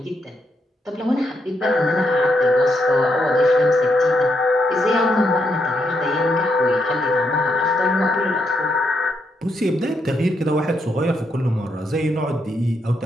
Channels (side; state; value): both; normal; correlation 0.79